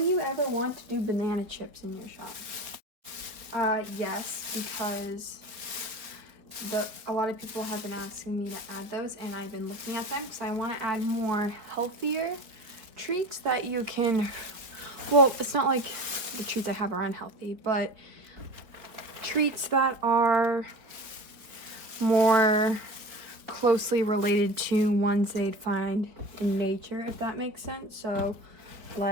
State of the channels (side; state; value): left; late; 4.5 ms